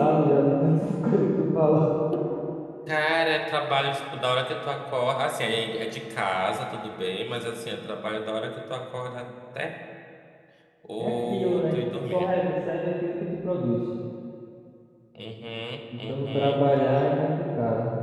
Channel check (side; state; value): both; identical; correlation 1.00